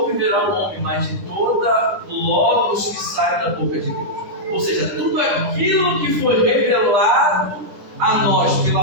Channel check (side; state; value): left; late; 10 ms